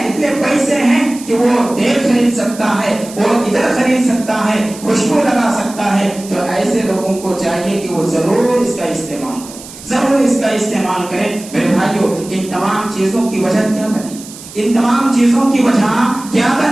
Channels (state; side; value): noise; right; hiss, 16 dB below the sound